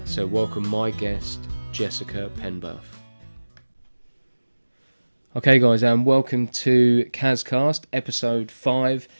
So welcome my guest, Jessica Penberth. Okay guys, and welcome to Kazcast, episode 5.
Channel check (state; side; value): inverted; both; correlation -1.00